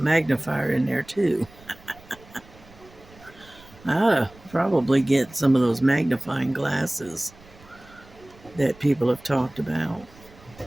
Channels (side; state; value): right; noise; rumble, 24 dB below the sound